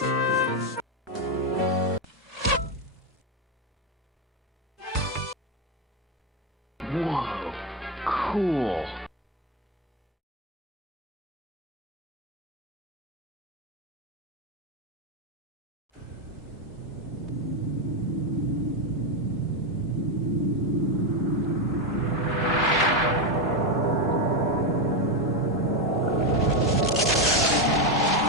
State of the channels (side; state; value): both; normal; correlation 0.08